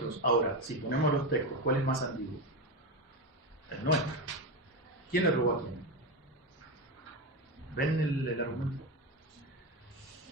Ahora, si ponemos los textos, ¿cuál es más antiguo? El nuestro. ¿Quién le robó a quién? ¿Ven el argumento?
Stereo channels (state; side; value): normal; both; correlation 0.15